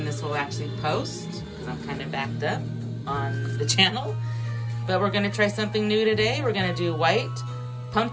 this will actually post, because I'm kind of backed up on the channel. But we're gonna try something new today. We're gonna do white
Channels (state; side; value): identical; both; correlation 1.00